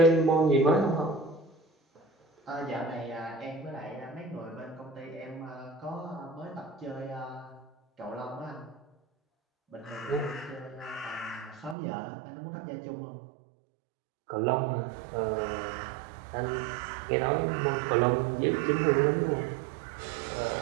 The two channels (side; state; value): left; drops out; at 11.8 s